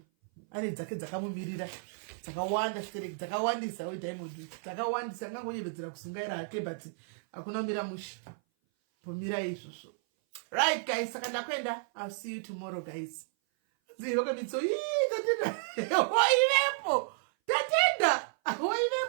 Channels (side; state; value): left; silent; 56 dB below the other